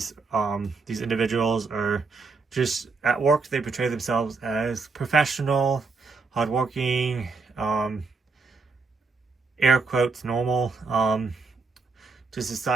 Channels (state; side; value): quieter; left; 4.4 dB